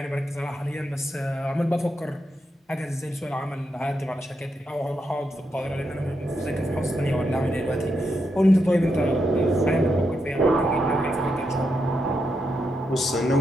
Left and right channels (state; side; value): normal; both; correlation 0.83